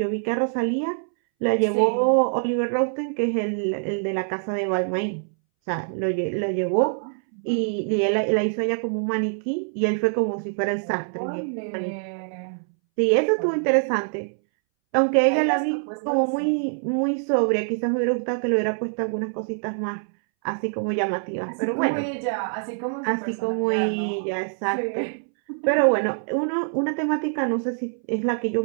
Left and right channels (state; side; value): silent; left; 62 dB below the other